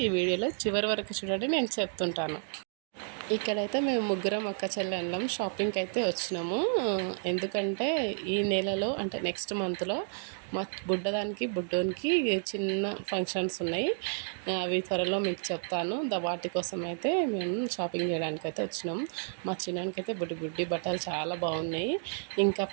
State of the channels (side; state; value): left; silent; digital silence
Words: ఈ వీడియోలో చివరి వరకు చూడండి, నేను చెప్తుంటాను. ఇక్కడైతే మేము ముగ్గురం అక్క చెల్లెళ్ళం షాపింగ్కి అయితే వచ్చినాము. ఎందుకంటే ఈ నెలలో అంటే నెక్స్ట్ మంత్లో మా బుడ్డోనికి చిన్న ఫంక్షన్స్ ఉన్నాయి. అవి త్వరలో మీకు చెప్తాను. వాటి కోసం అయితే మేము షాపింగ్ చేయడానికి అయితే వచ్చినాం. మా చిన్నానికి అయితే బుడ్డి బట్టలు చాలా బాగున్నాయి. ఇంకా